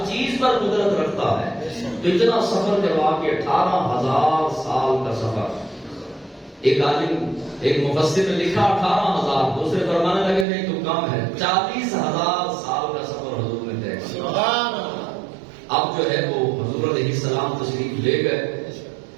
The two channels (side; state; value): left; drops out; at 10.5 s